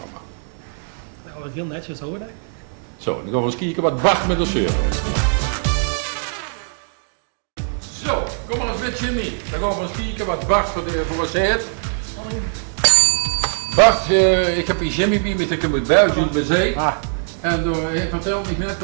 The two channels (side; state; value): left; silent; 65 dB below the other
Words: Nou, wat heel netjes hoor. Zo, dan gaan we eens kijken wat Bart met de zeuren is. Zo, kom maar eens met Jimmy. Dan gaan we eens kijken wat Bart voor ons heeft. Bart, ik heb hier Jimmy bij me, ik heb uit België, uit Mezeik. En hij vertelde me net